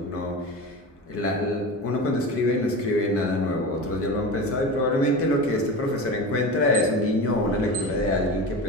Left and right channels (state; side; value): normal; both; correlation 0.28